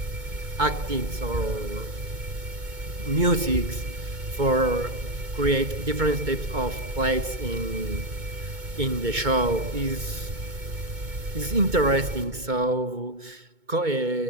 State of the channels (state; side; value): late; left; 2.2 ms